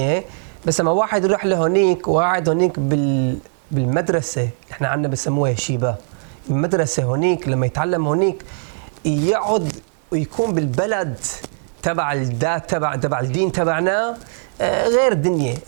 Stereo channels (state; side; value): silent; left; digital silence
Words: بس لما واحد يروح لهونيك وقاعد هونيك بالمدرسة، احنا عندنا بسموها شيبة، المدرسة هونيك لما يتعلم هونيك يقعد ويكون بالبلد تبع الذات تبع الدين تبعنا غير الدنيا.